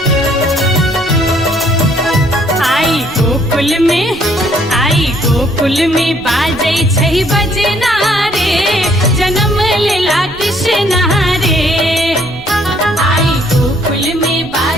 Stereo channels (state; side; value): noise; right; rumble, 18 dB below the sound